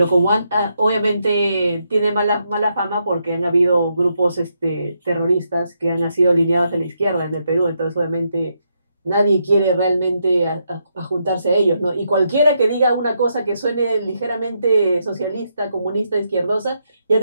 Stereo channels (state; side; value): inverted; both; correlation -0.80